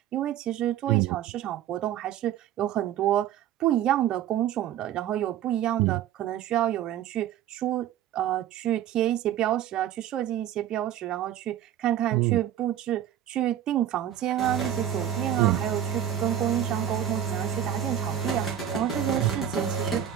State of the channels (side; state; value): left; quieter; 10.5 dB